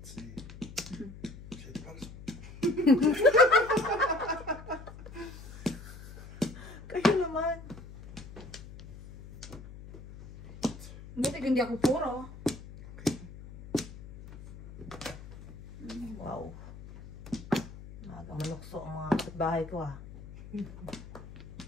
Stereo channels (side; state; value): left; noise; hum, 15 dB below the sound